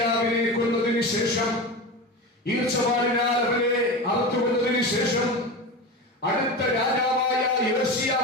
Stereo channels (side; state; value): both; normal; correlation 0.25